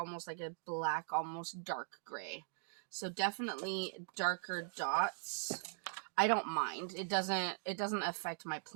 like a black, almost dark gray. So definitely darker dots. I don't mind. It doesn't affect my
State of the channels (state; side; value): silent; left; digital silence